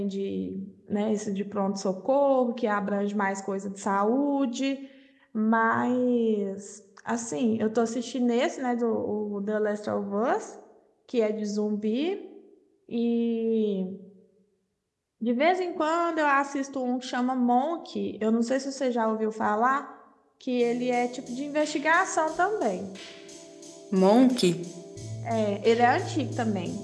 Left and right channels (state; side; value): identical; both; correlation 1.00